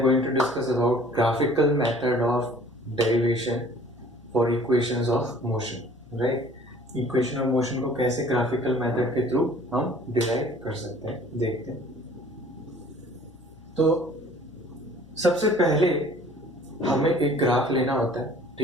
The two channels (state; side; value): noise; left; hum, 24 dB below the sound